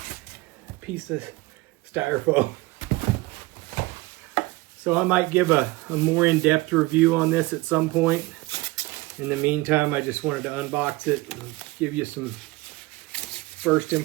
piece of styrofoam. So I might give a more in-depth review on this at some point. In the meantime, I just wanted to unbox it and give you some first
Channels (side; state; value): left; quieter; 21.4 dB